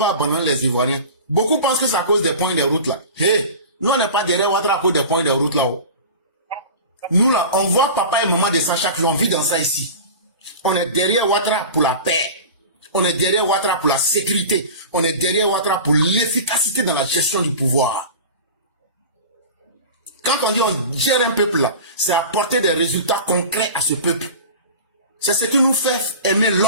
abandonner les Ivoiriens. Beaucoup pensent que c'est à cause des points de route là. Hey, nous on n'est pas derrière Ouattara à cause des points de route là-haut. Nous là, on voit papa et maman de ça chaque jour, on vit dans ça ici. On est derrière Ouattara pour la paix. On est derrière Ouattara pour la sécurité. On est derrière Ouattara pour l'efficacité dans la gestion du pouvoir. Quand on dit on gère un peuple là, c'est apporter des résultats concrets à ce peuple. C'est ce qui nous fait aimer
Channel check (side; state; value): both; inverted; correlation -0.34